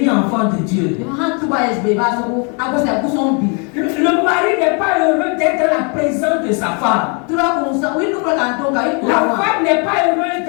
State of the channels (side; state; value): right; quieter; 35.8 dB